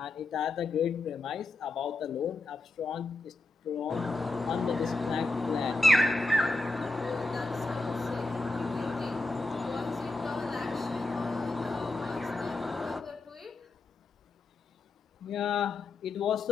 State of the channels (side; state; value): right; quieter; 3.1 dB